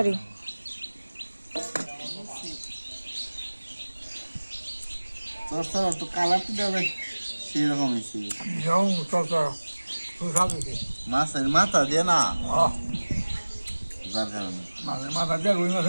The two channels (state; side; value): inverted; both; correlation -1.00